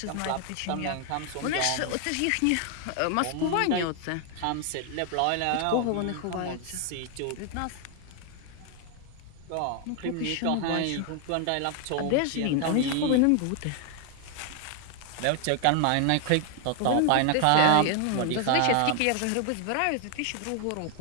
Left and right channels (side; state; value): both; different; correlation 0.00